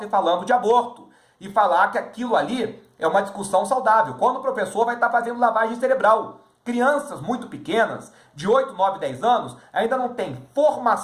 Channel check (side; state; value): both; identical; correlation 1.00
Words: falando de aborto. E falar que aquilo ali é uma discussão saudável. Quando o professor vai estar fazendo lavagem cerebral. Crianças muito pequenas, de 8, 9, 10 anos, ainda não têm